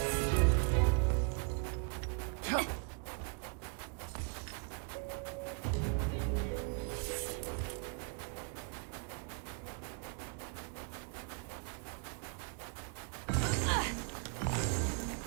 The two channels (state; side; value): quieter; left; 32.3 dB